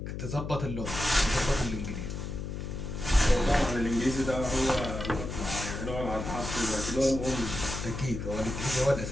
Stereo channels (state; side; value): noise; left; hum, 6 dB below the sound